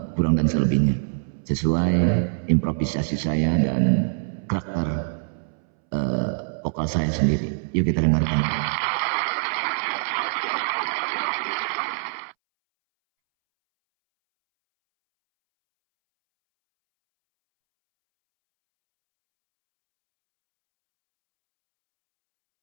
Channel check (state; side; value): silent; left; 63 dB below the other